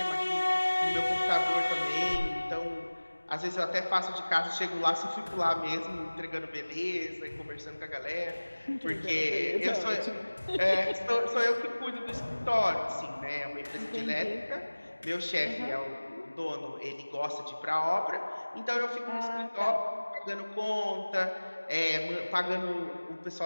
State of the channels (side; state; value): both; inverted; correlation -1.00